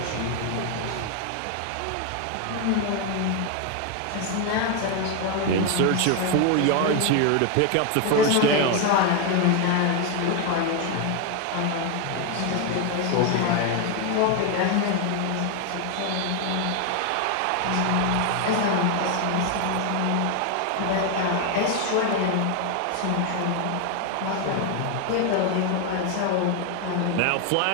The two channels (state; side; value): different; both; correlation 0.01